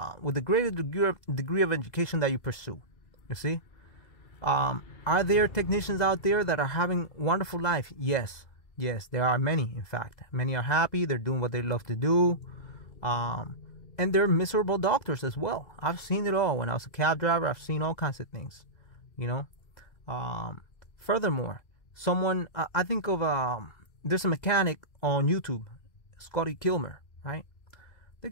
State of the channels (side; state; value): right; late; 2.0 ms